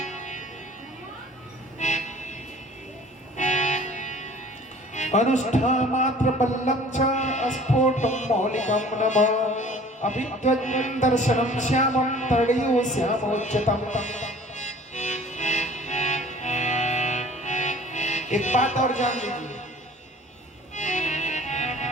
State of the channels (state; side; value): normal; both; correlation 0.48